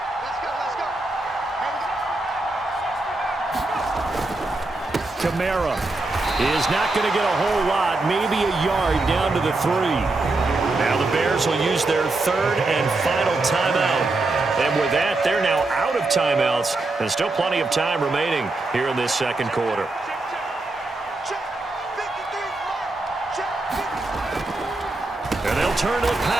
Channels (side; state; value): left; quieter; 3.1 dB